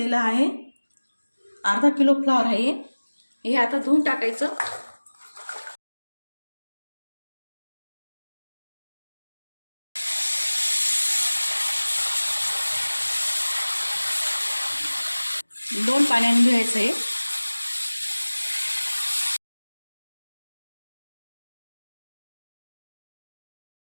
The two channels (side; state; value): both; inverted; correlation -1.00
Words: आहे. अर्धा किलो फ्लॉवर आहे. हे आता धुवून टाकायचं. दोन पाण्याने धुवायचं आहे.